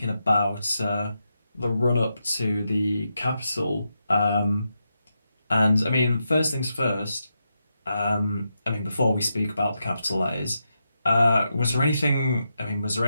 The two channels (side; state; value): both; inverted; correlation -0.85